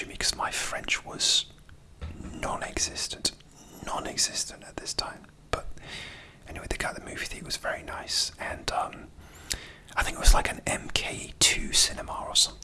me because my French was non-existent at this time. But anyway, the guy at the movie theatre was very nice, and I think it was like an MK2 cinema or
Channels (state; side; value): identical; both; correlation 1.00